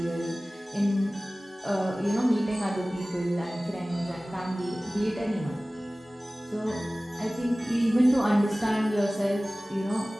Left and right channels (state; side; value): normal; both; correlation 0.98